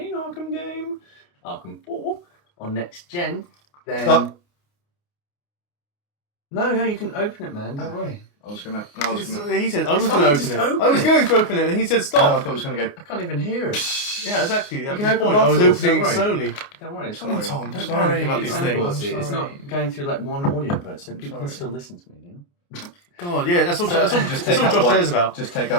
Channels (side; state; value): right; late; 29 ms